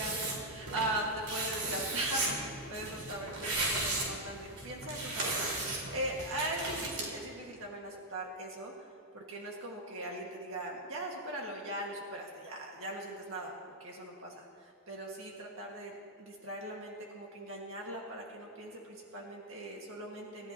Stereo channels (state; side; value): normal; both; correlation -0.01